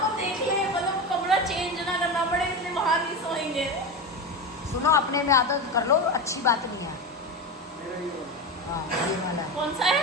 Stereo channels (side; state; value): both; normal; correlation 0.21